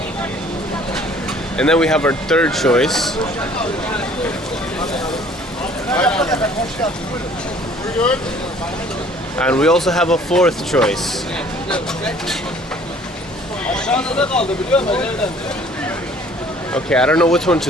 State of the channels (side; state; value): both; normal; correlation 0.55